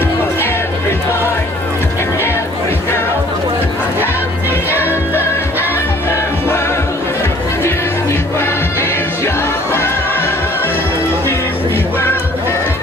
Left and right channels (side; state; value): both; normal; correlation 0.55